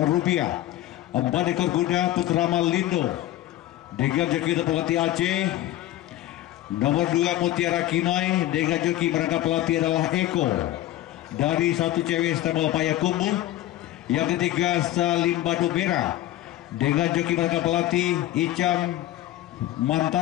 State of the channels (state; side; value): quieter; right; 14.3 dB